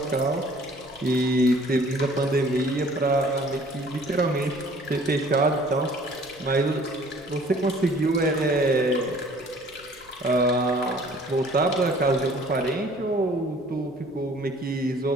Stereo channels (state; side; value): noise; right; rumble, 30 dB below the sound